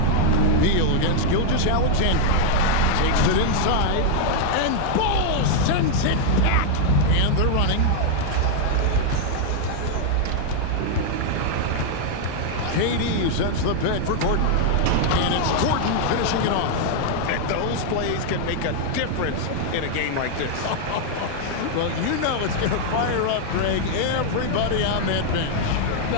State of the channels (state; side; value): different; both; correlation 0.00